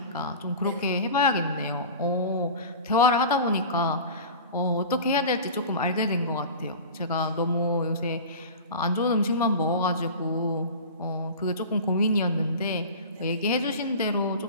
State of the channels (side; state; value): both; inverted; correlation -0.35